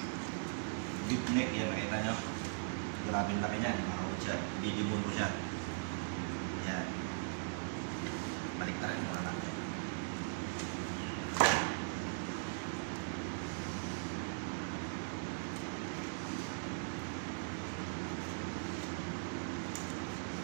deep neck yan, nakita nyo. Grabe laki niyan mga kabutcher, didibon ko siya. Yan. Baliktaran mo na lang.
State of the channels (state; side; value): silent; left; digital silence